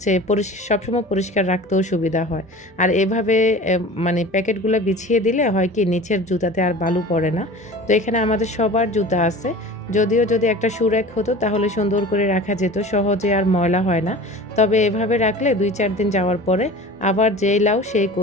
সবসময় পরিষ্কার রাখতেও সুবিধা হয়। আর এভাবে মানে প্যাকেটগুলো বিছিয়ে দিলে হয় কি নিচের জুতাতে আর বালু পড়ে না। তো এখানে আমাদের সবার জুতা আছে, যদিও যদি একটা শু র্যাক হতো তাহলে সুন্দর করে রাখা যেত, সহজে আর ময়লা হয় না। তবে এভাবে রাখলে 2-4 দিন যাওয়ার পরে আবার যেই লাউ সেই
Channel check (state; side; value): normal; both; correlation 0.38